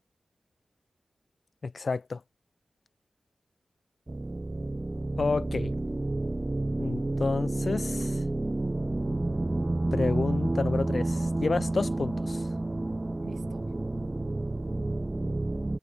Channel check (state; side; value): normal; both; correlation 0.96